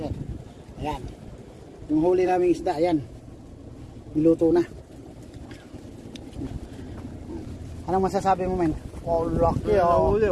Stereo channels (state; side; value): identical; both; correlation 1.00